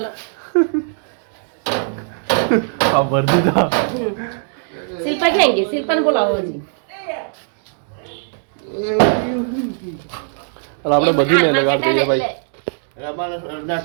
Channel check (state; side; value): silent; left; digital silence